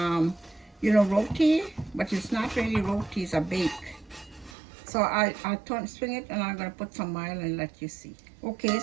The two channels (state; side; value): drops out; left; at 4.5 s